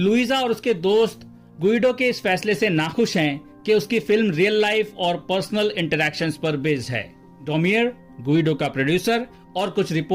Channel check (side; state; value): both; identical; correlation 1.00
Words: और उसके दोस्त गुइडो के इस फैसले से नाखुश हैं कि उसकी फिल्म रियल लाइफ और पर्सनल इंटरैक्शंस पर बेस्ड है। डोमियर, गुइडो का प्रोड्यूसर, और कुछ